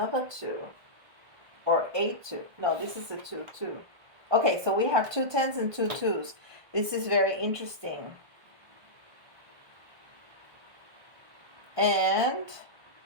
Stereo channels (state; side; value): late; left; 1.6 ms